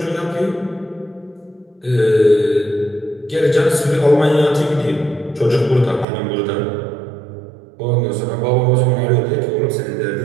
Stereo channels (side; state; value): left; drops out; at 6.1 s